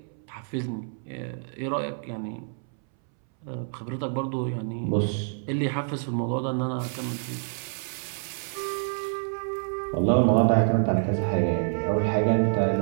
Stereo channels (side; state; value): left; silent; 60 dB below the other